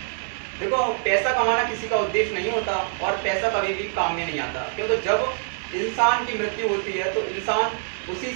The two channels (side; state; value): left; silent; 59 dB below the other